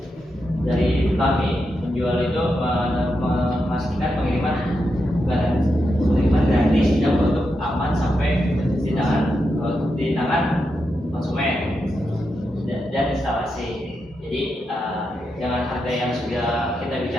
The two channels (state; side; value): normal; both; correlation 0.86